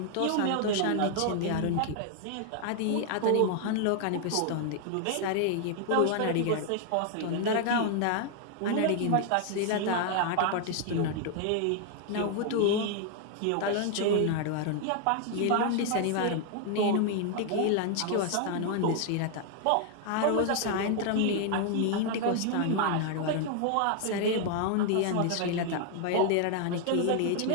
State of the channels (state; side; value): different; both; correlation 0.00